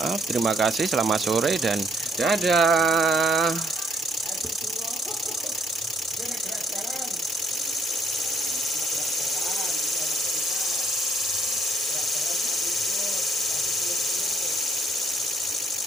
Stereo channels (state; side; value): normal; both; correlation 0.67